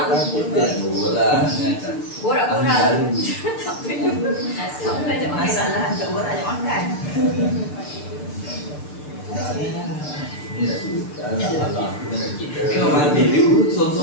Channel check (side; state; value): right; late; 6.7 ms